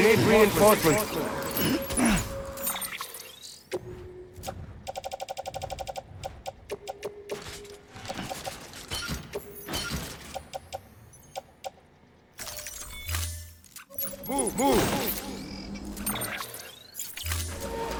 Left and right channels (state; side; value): identical; both; correlation 1.00